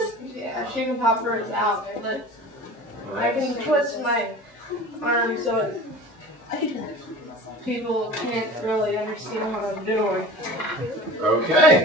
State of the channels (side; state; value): both; normal; correlation 0.38